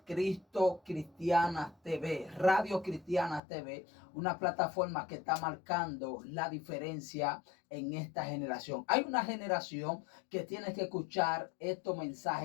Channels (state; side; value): drops out; right; at 3.4 s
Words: Cristo Cristiana TV, Radio Cristiana TV, una plataforma que está marcando la diferencia en esta generación. Hay una generación que tiene que escuchar estos